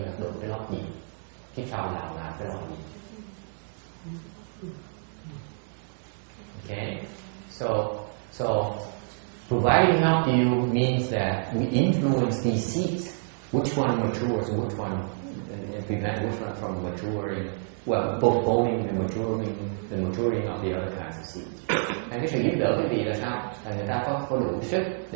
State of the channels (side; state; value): left; silent; digital silence